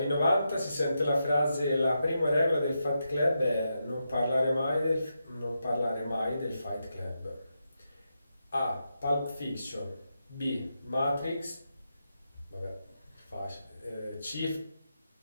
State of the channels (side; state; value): both; inverted; correlation -0.86